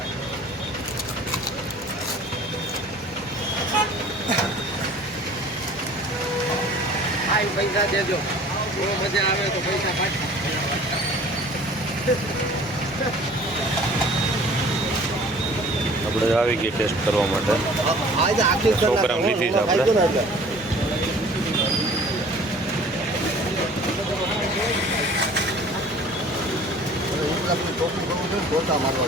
પૈસા દેજો, બહુ મજા આવે તો પૈસા પાછા. આપણે આવી ગઈ ટેસ્ટ કરવા માટે. 100 ગ્રામ લીધી છે આપણે.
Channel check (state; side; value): normal; both; correlation 0.48